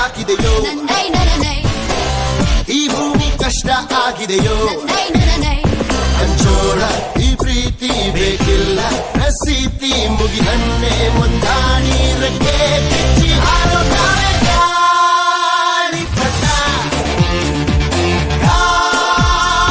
ಈ ಭೂಮಿ ಕಷ್ಟ ಆಗಿದೆಯೋ ಹಂಚೋಳ ಈ ಪ್ರೀತಿ ಬೇಕಿಲ್ಲ ರಸೀತಿ ಮುಗಿದನ್ನೇ ಮುಂದಾಣಿ ರೆಕ್ಕೆ ಬಿಚ್ಚಿ ಹಾರೋ ನಾವೇ ಗಾಳಿಪಟ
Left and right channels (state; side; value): identical; both; correlation 1.00